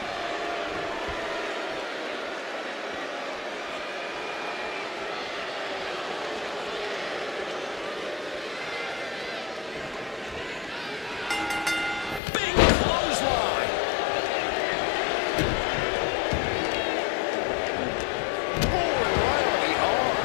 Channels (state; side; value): drops out; right; at 12.2 s